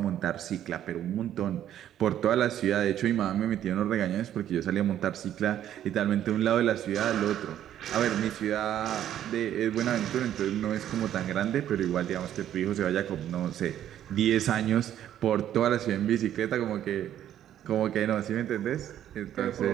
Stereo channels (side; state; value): left; quieter; 11.1 dB